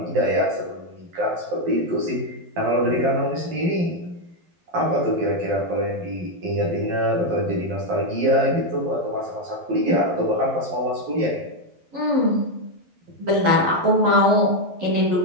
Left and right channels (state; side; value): late; left; 12 ms